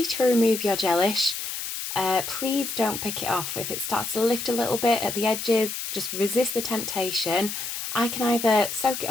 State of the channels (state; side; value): noise; left; hiss, 5 dB below the sound